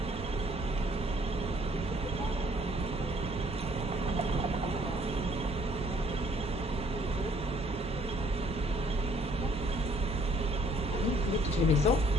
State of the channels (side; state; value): both; normal; correlation 0.62